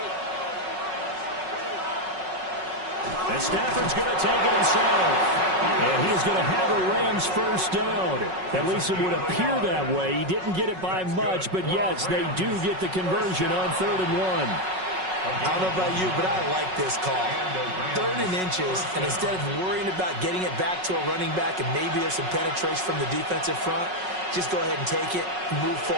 And Stafford's going to take it himself. And he is going to have a Rams first down. At least it would appear that way. He didn't get it by much, but yes, they do get the conversion on 3rd and 1. I don't know about you, but I like this call. 3rd and inches, and instead of worrying about getting it back to a running back and maybe there's some penetration from the defensive front, just go ahead and take it, move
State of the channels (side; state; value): left; late; 5.4 ms